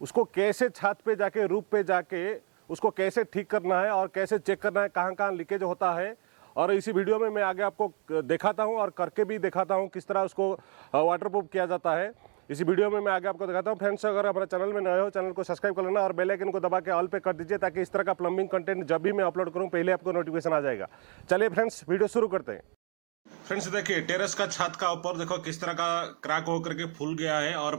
उसको कैसे छत पे जाके रूफ पे जाके उसको कैसे ठीक करना है और कैसे चेक करना है कहाँ कहाँ लीकेज होता है। और इसी वीडियो में मैं आगे आपको दिखाता हूँ और करके भी दिखाता हूँ किस तरह उसको वाटरप्रूफ किया जाता है। इसी वीडियो में मैं आगे आपको दिखाता हूँ। फ्रेंड्स, अगर हमारे चैनल में नए हो, चैनल को सब्सक्राइब कर लेना और बेल आइकन को दबा के ऑल पे कर दीजिए ताकि इस तरह का प्लम्बिंग कंटेंट जब भी मैं अपलोड करूँ पहले आपको नोटिफिकेशन आ जाएगा। चलिए फ्रेंड्स, वीडियो शुरू करते हैं। फ्रेंड्स, देखिए टेरेस का छत का ऊपर देखो किस तरह का क्रैक होकर के फूल गया है और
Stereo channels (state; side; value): quieter; left; 37.3 dB